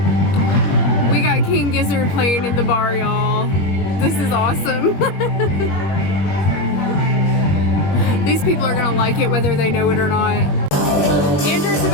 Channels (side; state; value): right; late; 21 ms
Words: We got King Gizzard playing in the bar, y'all. This is awesome. These people are gonna like it whether they know it or not. Andrew's